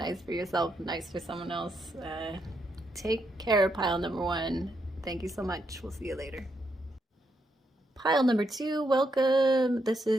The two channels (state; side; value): normal; both; correlation 0.79